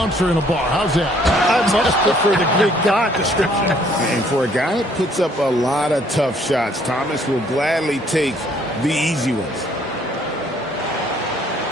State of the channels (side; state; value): both; normal; correlation 0.63